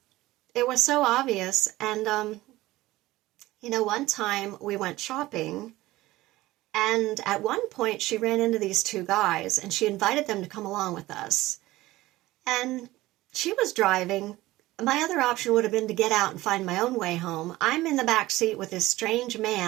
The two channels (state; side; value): quieter; left; 17.7 dB